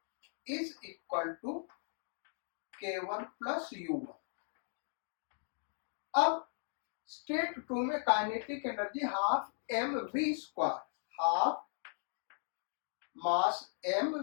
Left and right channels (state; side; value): silent; right; digital silence